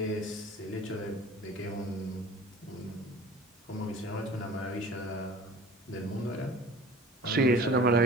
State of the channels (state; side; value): normal; both; correlation 0.44